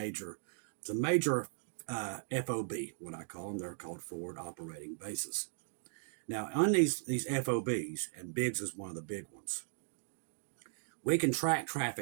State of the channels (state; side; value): silent; left; digital silence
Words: FOB, what I call them. They're called forward operating bases. Now on these FOBs, and Biggs is one of the big ones, we can track